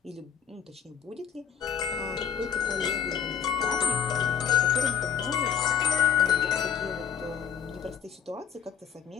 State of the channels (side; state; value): right; quieter; 8.0 dB